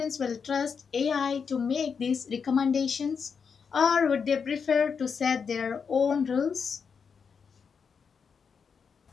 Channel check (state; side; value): quieter; right; 6.1 dB